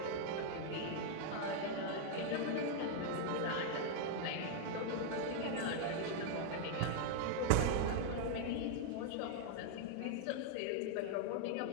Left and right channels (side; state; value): both; different; correlation -0.01